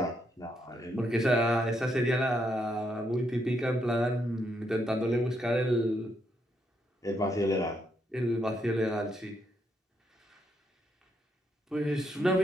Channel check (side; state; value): both; normal; correlation 0.77